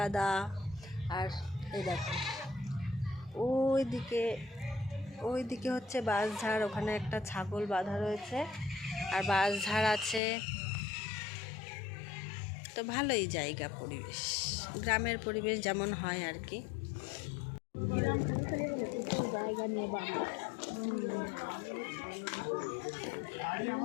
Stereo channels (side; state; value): right; drops out; at 10.2 s